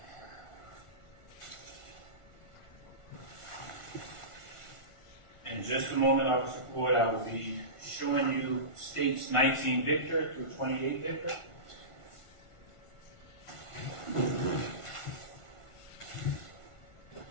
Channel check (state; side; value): late; right; 1.4 ms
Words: In just a moment, Officer Floyd, I will be showing you states 19 Victor through 28 Victor.